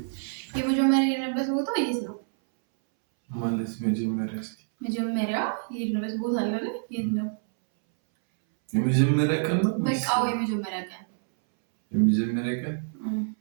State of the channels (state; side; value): silent; left; 60 dB below the other